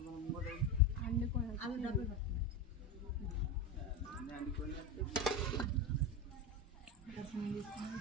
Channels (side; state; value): both; normal; correlation 0.17